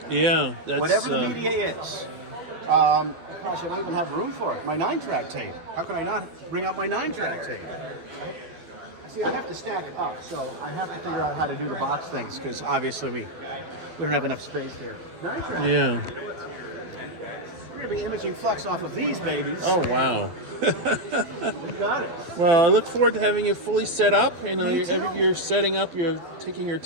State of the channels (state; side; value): late; left; 12 ms